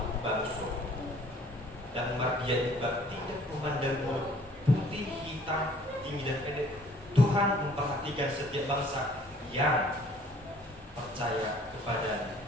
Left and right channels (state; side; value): normal; both; correlation 0.56